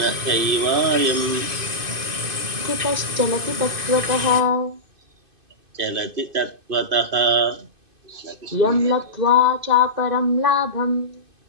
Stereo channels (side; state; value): left; late; 2.5 ms